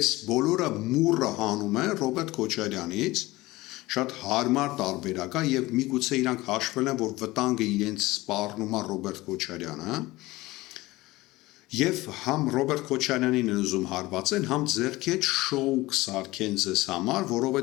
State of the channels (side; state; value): right; quieter; 19.5 dB